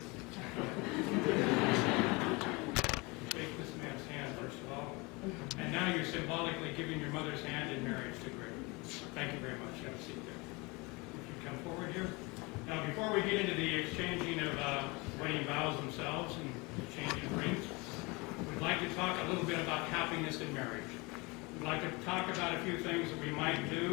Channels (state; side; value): quieter; right; 26.3 dB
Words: Shake this man's hand, first of all. And now you're symbolically giving your mother's hand in marriage to Greg. Thank you very much. Have a seat there. If you come forward here. Now, before we get into the exchanging of wedding vows themselves and exchanging rings, we'd like to talk a little bit about happiness in marriage. We'd like to talk about a few things that we might